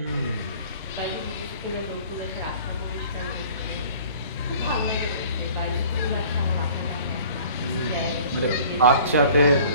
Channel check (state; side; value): inverted; both; correlation -0.49